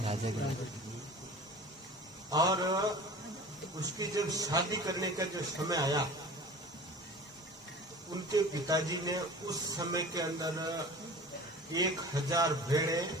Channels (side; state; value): both; normal; correlation 0.40